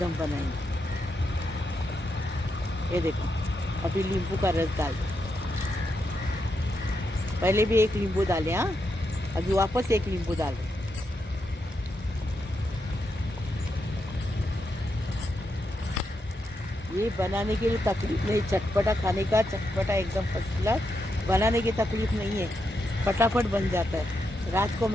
बनाएंगे। ये देखो अभी नींबू का रस डाल दो। पहले भी 1 नींबू डाले, हाँ, अभी वापस 1 नींबू डाल दो। ये बनाने के लिए तकलीफ नहीं, चटपटा खाने का, चटपटा एकदम फर्स्ट क्लास। बनाने की तकलीफ नहीं है, फटाफट बन जाता है। रात को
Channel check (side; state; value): both; normal; correlation 0.83